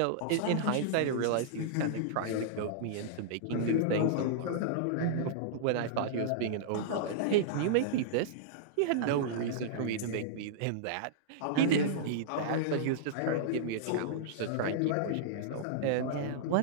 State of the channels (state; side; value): different; both; correlation -0.02